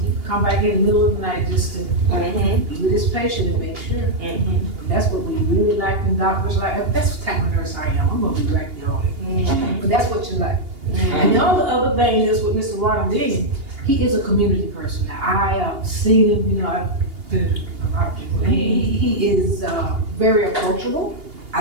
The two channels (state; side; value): late; left; 2.8 ms